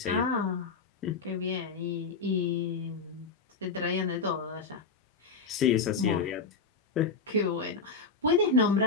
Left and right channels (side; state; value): right; quieter; 4.5 dB